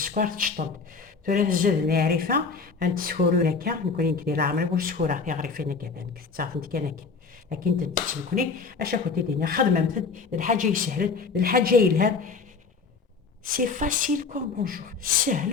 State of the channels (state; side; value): quieter; right; 4.9 dB